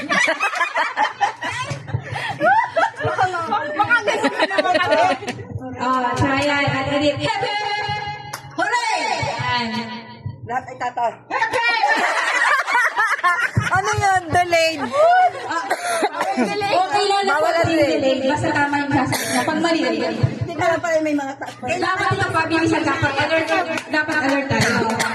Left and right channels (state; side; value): identical; both; correlation 1.00